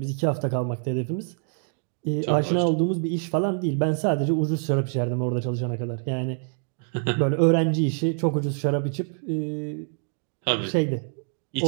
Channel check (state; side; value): silent; left; 61 dB below the other